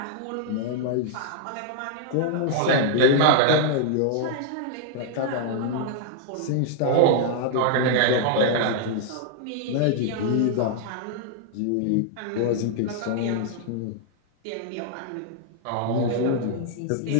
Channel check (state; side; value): different; both; correlation -0.01